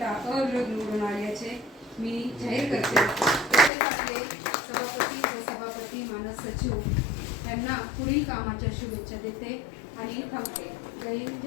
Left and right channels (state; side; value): drops out; right; at 3.7 s